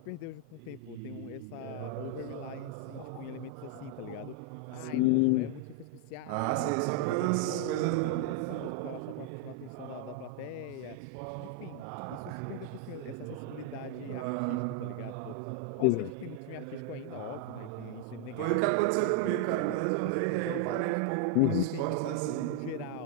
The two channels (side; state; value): both; different; correlation 0.00